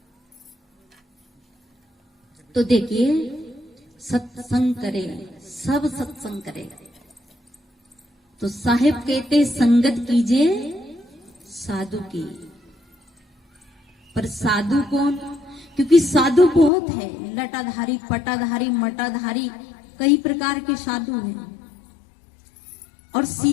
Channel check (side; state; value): right; drops out; at 16.7 s